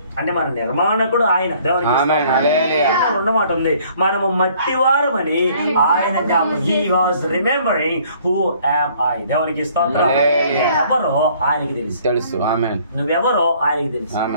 అంటే మన నిర్మాణకుడు ఆయన. దేవునికి రెండు మాట ఉంది, మనము మట్టివారమని ఆయన జ్ఞాపకం. He was remembering who am I. దేవునికి స్తోత్రం. ఎవరో ఆయనకి తెలుసు. నువ్వెవరో ఆయనకి తెలుసు,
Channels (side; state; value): both; inverted; correlation -0.59